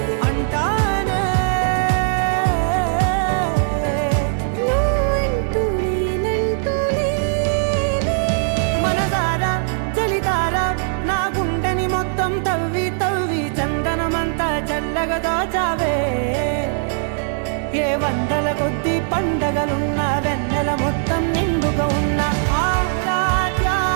అంటానే నువ్వంటూ నేనంటూ లేనే. మనసారా చలితారా నా గుండెని మొత్తం తవ్వి తవ్వి చందనమంతా చల్లగా దోచావే. ఏ వందల కొద్ది పండగలున్నా వెన్నెల మొత్తం నిండుగా ఉన్న ఆరాధ్య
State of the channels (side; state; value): left; silent; 64 dB below the other